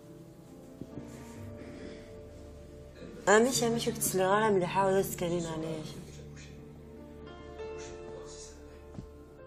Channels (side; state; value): both; identical; correlation 1.00